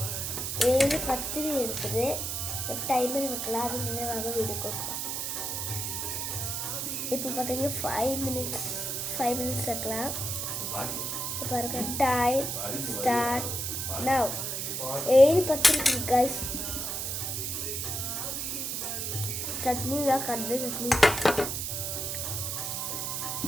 7:10 இருக்குது. இப்போ டைமர் வைக்கலாம், அது நினைவாக வீடியோ கொடுப்போம். இப்போ பார்த்தீங்கன்னா 5 minutes வைக்கலாம். பாருங்க, டைம் ஸ்டார்ட் நவ். 7:10 இருக்குது guys. சட்னி தான், கடலை சட்னி.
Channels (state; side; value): noise; right; hiss, 2 dB below the sound